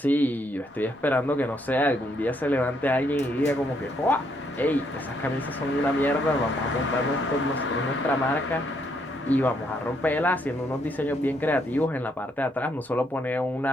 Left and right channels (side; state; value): both; normal; correlation 0.73